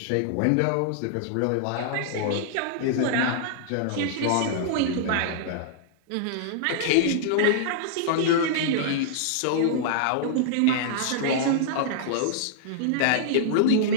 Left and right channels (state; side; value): different; both; correlation -0.02